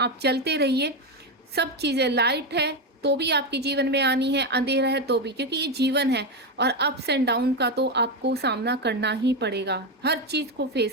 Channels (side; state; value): both; normal; correlation 0.11